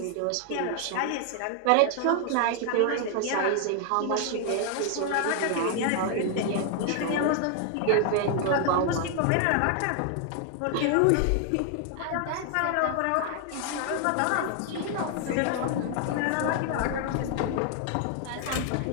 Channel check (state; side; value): different; both; correlation 0.00